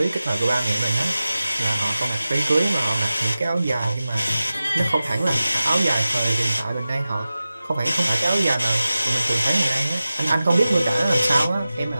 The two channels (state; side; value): inverted; both; correlation -0.95